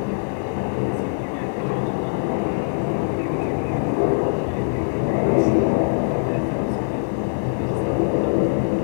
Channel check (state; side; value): silent; right; 57 dB below the other